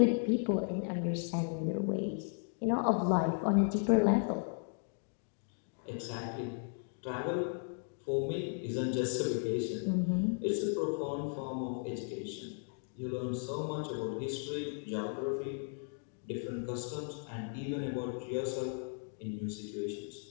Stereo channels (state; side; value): silent; right; 54 dB below the other